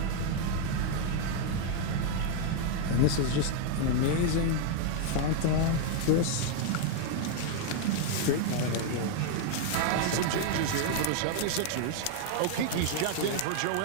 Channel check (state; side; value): different; both; correlation 0.00